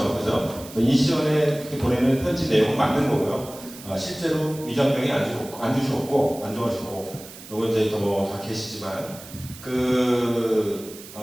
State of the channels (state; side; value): noise; right; hiss, 16 dB below the sound